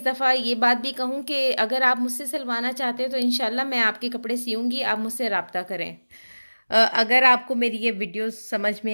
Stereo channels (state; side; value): inverted; both; correlation -1.00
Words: दफ़ा ये बात भी कहूँ कि अगर आप मुझसे सिलवाना चाहते हैं तो इंशाल्लाह मैं आपके कपड़े सियूँगी, आप मुझसे रब्ता करें। अगर आपको मेरी ये वीडियो समझ